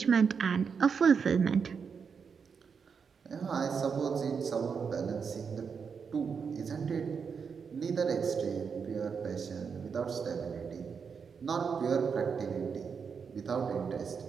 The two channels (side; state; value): left; quieter; 6.1 dB